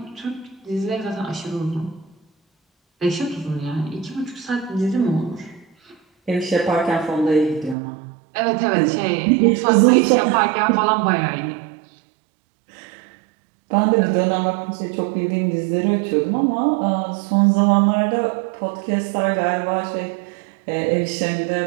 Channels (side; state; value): left; drops out; at 7.8 s